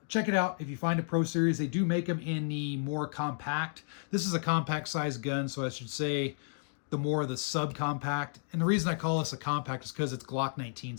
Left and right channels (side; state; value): right; silent; digital silence